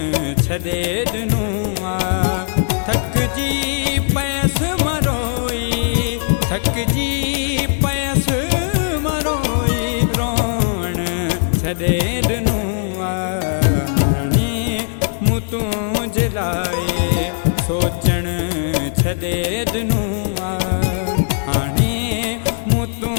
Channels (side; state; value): right; silent; digital silence